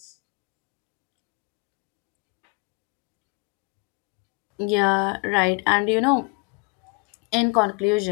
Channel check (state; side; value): quieter; right; 32.0 dB